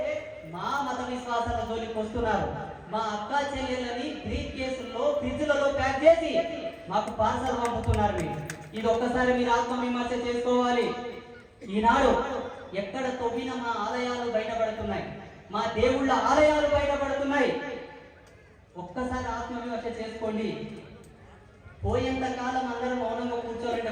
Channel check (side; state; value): both; identical; correlation 1.00